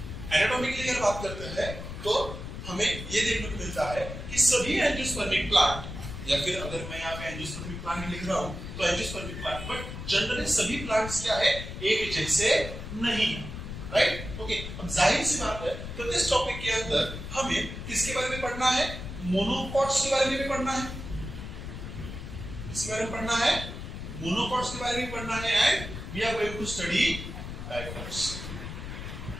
Anatomically अगर बात करते हैं तो हमें ये देखने को मिलता है कि सभी एंजियोस्पर्मिक प्लांट, या फिर अगर मैं यहाँ पे एंजियोस्पर्मिक प्लांट लिख रहा हूँ तो एंजियोस्पर्मिक प्लांट, बट जनरली सभी प्लांट्स क्या है, एक जैसे नहीं है, राइट? ओके, अब जाहिर सी बात है तो इस टॉपिक के अंदर हमें किसके बारे में पढ़ना है? मोनोकॉट्स के बारे में भी पढ़ना है। किसके बारे में पढ़ना है? मोनोकॉट्स के बारे में पढ़ना है, and we are going to study dicots,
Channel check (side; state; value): left; noise; rumble, 8 dB below the sound